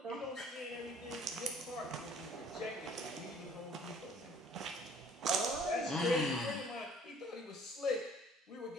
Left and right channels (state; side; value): normal; both; correlation 0.55